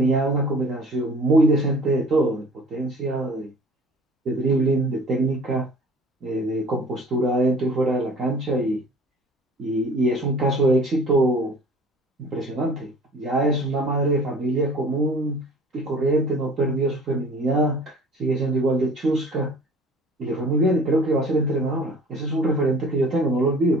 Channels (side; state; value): both; normal; correlation 0.47